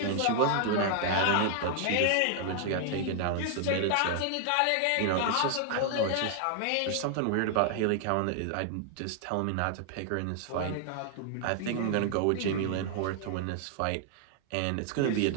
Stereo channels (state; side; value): different; both; correlation 0.00